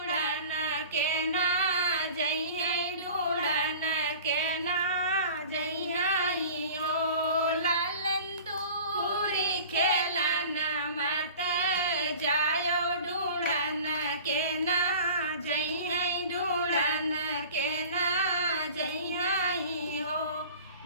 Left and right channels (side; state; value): both; inverted; correlation -0.42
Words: के ना जइहे ढूंढन के ना जइहे हो लालन दूरी खेलन मत जायो ढूंढन के ना जइहे ढूंढन के ना जइहे हो